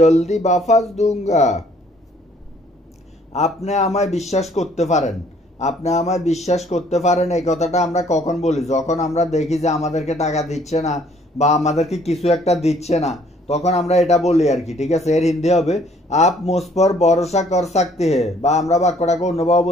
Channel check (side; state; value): both; normal; correlation 0.61